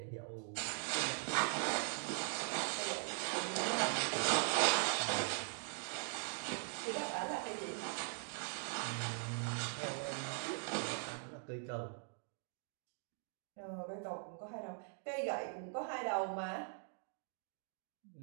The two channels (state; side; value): silent; left; 50 dB below the other